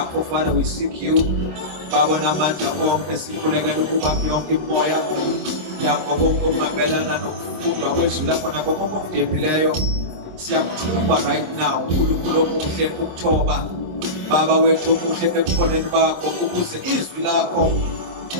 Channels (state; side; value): late; left; 26 ms